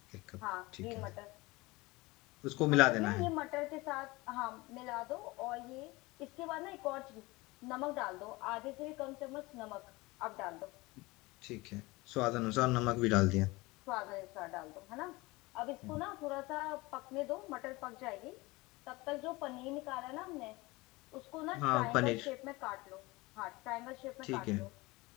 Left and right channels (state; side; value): quieter; right; 22.5 dB